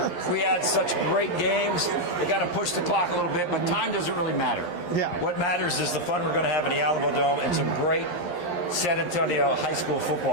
we had such great games. They got to push the clock a little bit, but time doesn't really matter. Yeah. What matters is the fun we're going to have in the Alamodome and some great San Antonio high school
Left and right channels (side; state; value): right; late; 11 ms